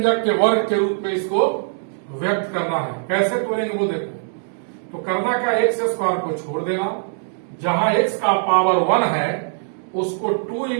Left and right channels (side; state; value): left; silent; digital silence